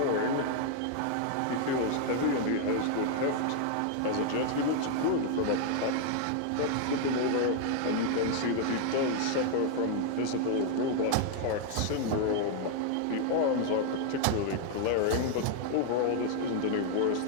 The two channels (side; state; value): both; different; correlation 0.00